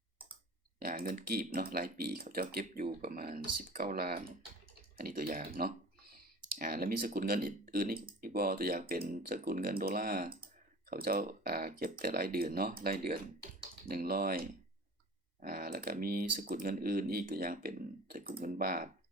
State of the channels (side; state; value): both; normal; correlation 0.41